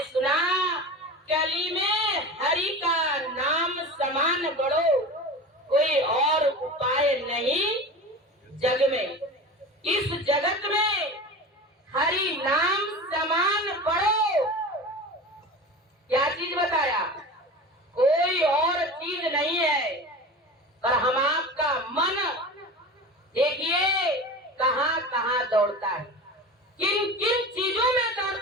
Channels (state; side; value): normal; both; correlation 0.31